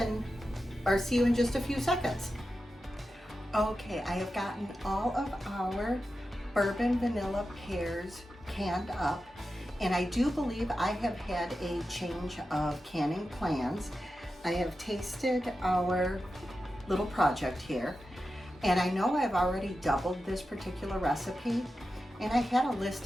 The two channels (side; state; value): both; normal; correlation 0.91